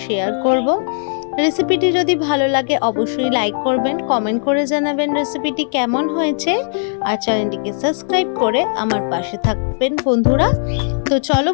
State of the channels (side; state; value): right; silent; 65 dB below the other